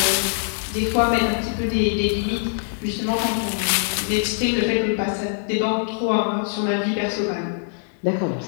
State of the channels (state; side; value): silent; right; 64 dB below the other